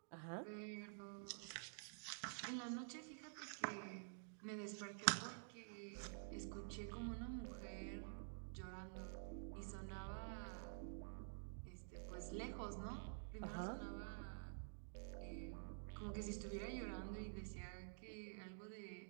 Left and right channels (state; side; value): silent; left; digital silence